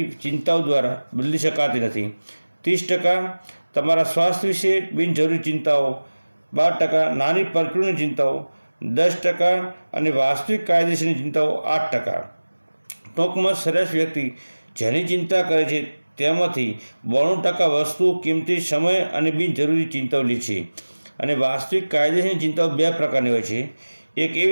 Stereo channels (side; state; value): both; inverted; correlation -1.00